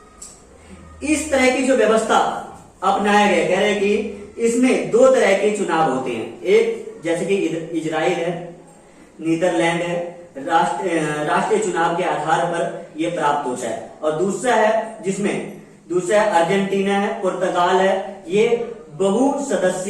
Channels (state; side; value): identical; both; correlation 1.00